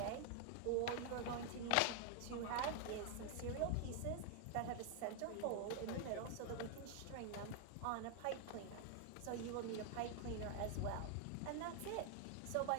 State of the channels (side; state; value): both; different; correlation 0.00